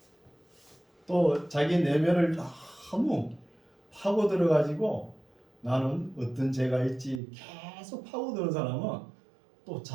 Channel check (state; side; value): drops out; left; at 7.2 s